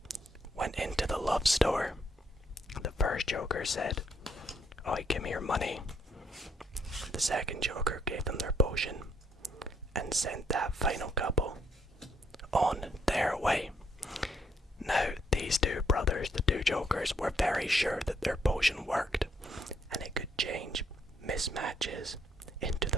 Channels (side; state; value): both; normal; correlation 0.72